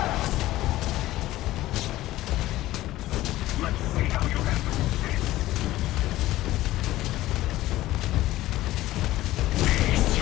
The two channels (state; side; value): quieter; right; 16.0 dB